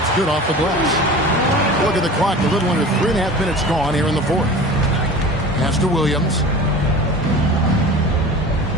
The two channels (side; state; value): both; normal; correlation 0.37